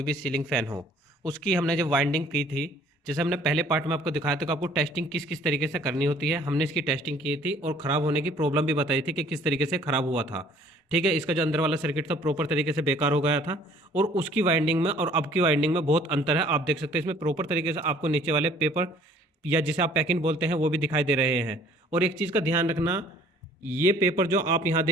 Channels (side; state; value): both; normal; correlation 0.55